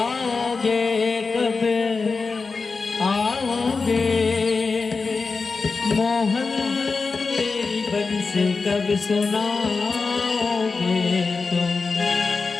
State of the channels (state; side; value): quieter; right; 4.4 dB